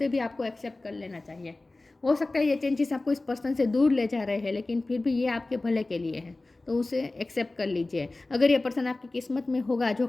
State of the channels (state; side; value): quieter; right; 3.0 dB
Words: भी आपको एक्सेप्ट कर लेना चाहिए। हो सकता है ये चेंजेस आपको इस पर्सन से दूर ले जा रहे हैं, लेकिन फिर भी ये आपके भले के लिए है, तो उसे एक्सेप्ट कर लीजिए। अगर ये पर्सन आपकी किस्मत में होगा, जो